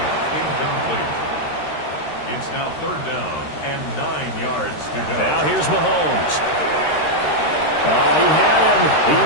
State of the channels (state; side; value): late; right; 13 ms